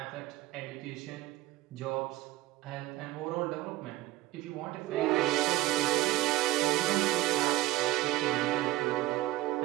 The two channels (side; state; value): left; quieter; 17.2 dB